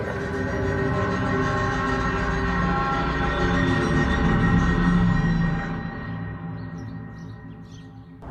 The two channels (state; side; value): identical; both; correlation 1.00